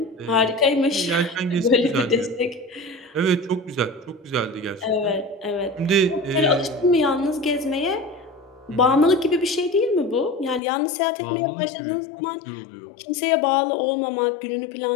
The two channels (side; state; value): right; drops out; at 10.6 s